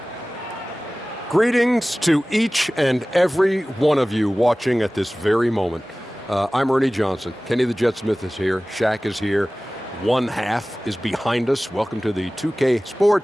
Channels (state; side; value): normal; both; correlation 0.98